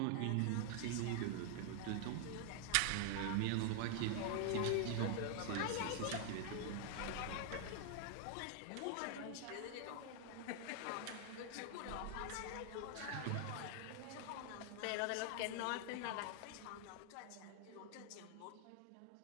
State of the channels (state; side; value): different; both; correlation 0.00